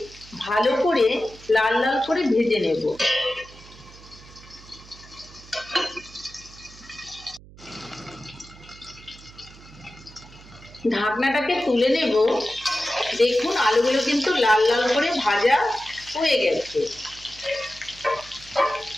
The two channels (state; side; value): noise; right; hum, 21 dB below the sound